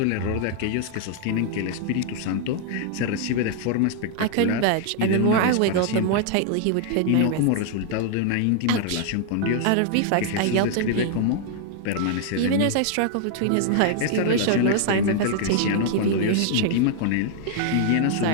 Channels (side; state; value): both; different; correlation 0.00